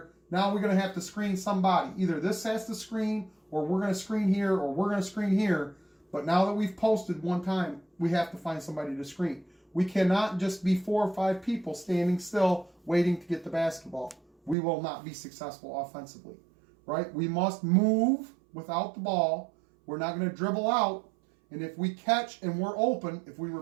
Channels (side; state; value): left; drops out; at 14.6 s